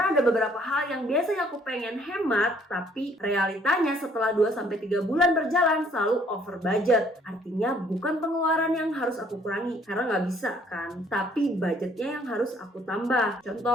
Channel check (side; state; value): both; normal; correlation 0.62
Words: ada beberapa hal yang biasanya aku pengen hemat tapi realitanya setelah 2-3 bulan berjalan selalu over budget. Artinya bukan pengeluaran yang harus aku kurangi karena nggak bisa kan, tapi budgetnya yang harus aku tambah.